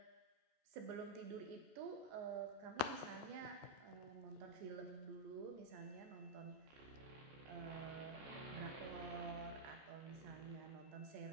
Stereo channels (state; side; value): late; left; 14 ms